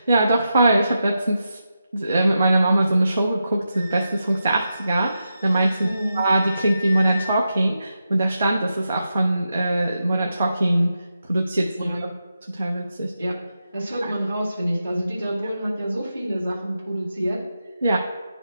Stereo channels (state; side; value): inverted; both; correlation -0.88